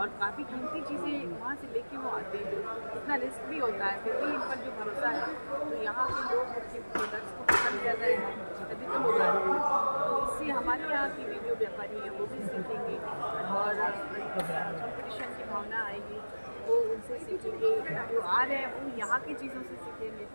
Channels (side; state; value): both; inverted; correlation -1.00